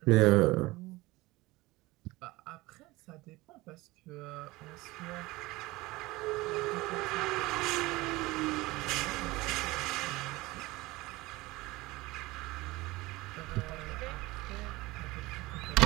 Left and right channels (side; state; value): left; quieter; 20.6 dB